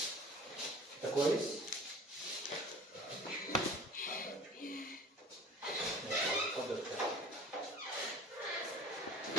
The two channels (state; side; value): normal; both; correlation 0.43